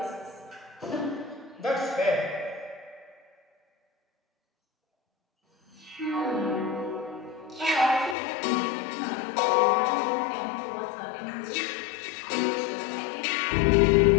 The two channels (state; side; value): drops out; right; at 8.2 s